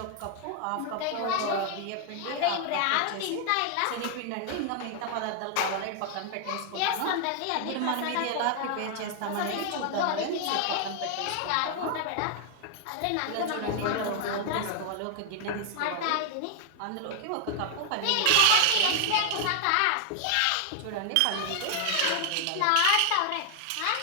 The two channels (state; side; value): different; both; correlation 0.00